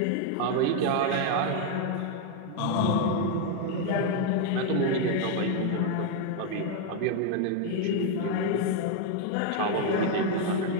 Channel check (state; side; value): different; both; correlation 0.01